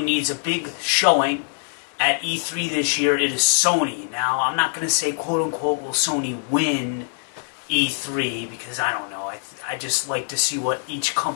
needs a big showing at E3 this year, it is Sony. Now, I'm not going to say quote-unquote will Sony win E3, because I don't know. I just like to see what each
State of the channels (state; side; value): silent; right; digital silence